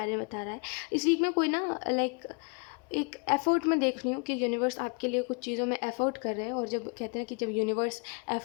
में बता रहा है। इस वीक में कोई ना लाइक एक एफ़र्ट में देख रही हूँ कि यूनिवर्स आपके लिए कुछ चीज़ों में एफ़र्ट कर रहे हैं। और जब कहते हैं कि जब यूनिवर्स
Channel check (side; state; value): right; quieter; 35.2 dB